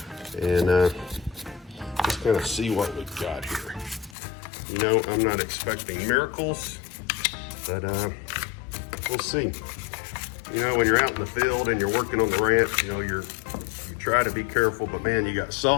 and just kind of see what we've got here. You know, I'm not expecting miracles, but we'll see. You know, when you're out in the field and you're working on the ranch, you know, you try to be careful, but man, you got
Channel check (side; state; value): right; drops out; at 4.2 s